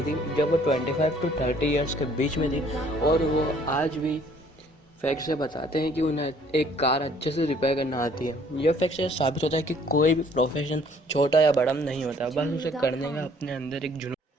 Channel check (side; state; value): both; normal; correlation 0.59